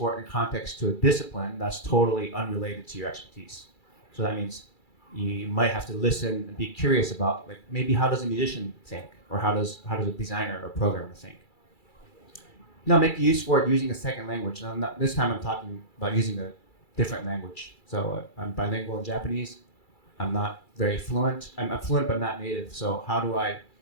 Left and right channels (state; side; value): late; right; 2.3 ms